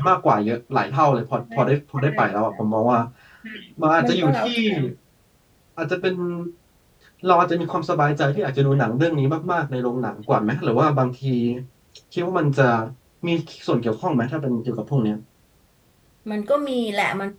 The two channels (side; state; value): both; identical; correlation 1.00